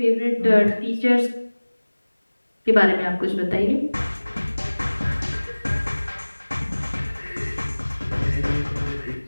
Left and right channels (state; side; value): inverted; both; correlation -1.00